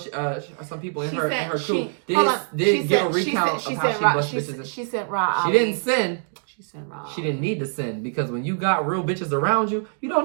some people in her crew did give a recount of how she bust bitches. She sent Ra. She didn't sin. She sent Ra. She didn't need to sin, because when you got real bitches around you, you don't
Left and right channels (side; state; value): left; silent; digital silence